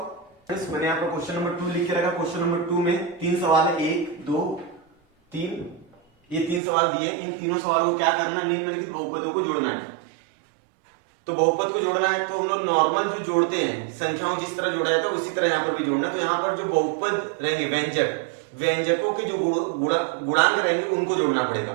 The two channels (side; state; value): left; drops out; at 6.6 s